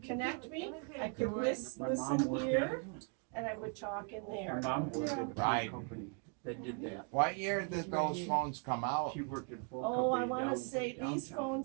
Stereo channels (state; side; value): quieter; left; 37.9 dB